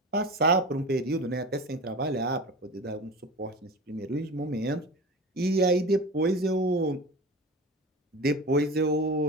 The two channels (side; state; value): both; normal; correlation 0.31